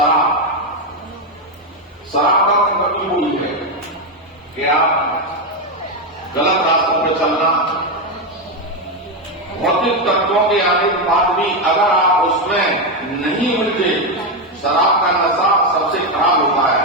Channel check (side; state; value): both; normal; correlation 0.08